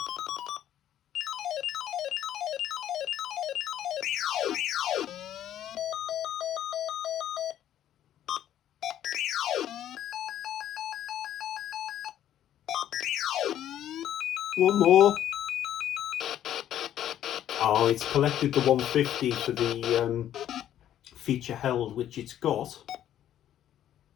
One more. Oh, it's collected the 150 for the feature held, which it's got.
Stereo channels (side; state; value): right; quieter; 11.3 dB